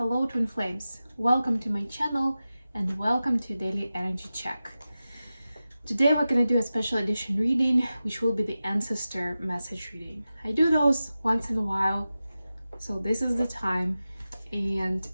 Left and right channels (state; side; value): inverted; both; correlation -0.94